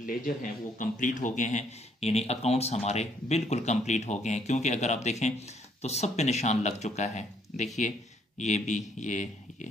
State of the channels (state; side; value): normal; both; correlation 0.68